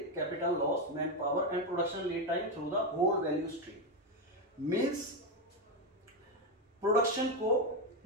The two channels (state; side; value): normal; both; correlation 0.07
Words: loss, man power and production lead time through the whole value stream. Means production को